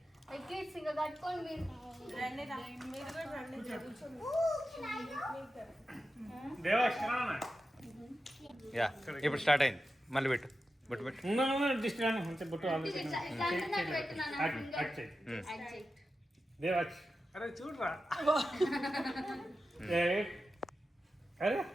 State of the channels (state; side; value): normal; both; correlation 0.92